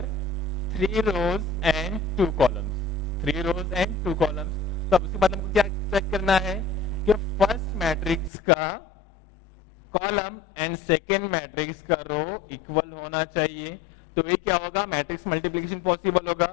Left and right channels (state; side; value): drops out; right; at 8.3 s